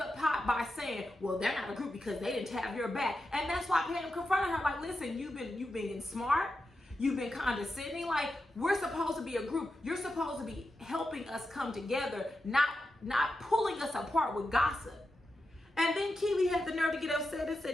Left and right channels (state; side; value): normal; both; correlation 0.89